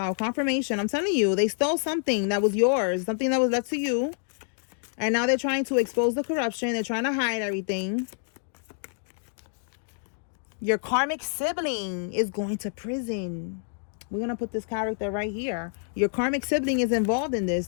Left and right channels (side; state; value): right; silent; digital silence